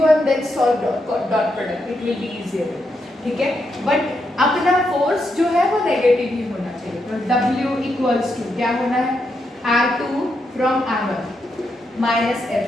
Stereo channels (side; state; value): both; normal; correlation 0.82